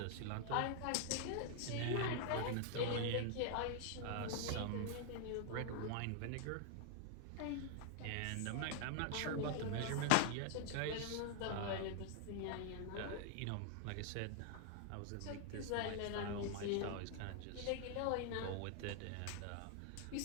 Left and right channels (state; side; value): different; both; correlation 0.00